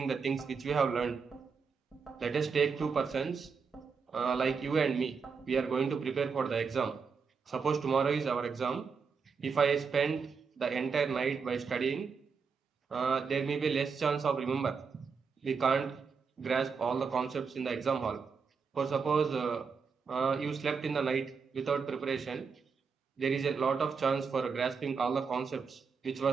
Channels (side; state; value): left; quieter; 5.5 dB